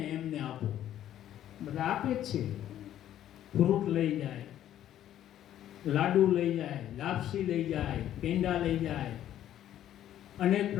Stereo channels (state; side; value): quieter; right; 11.7 dB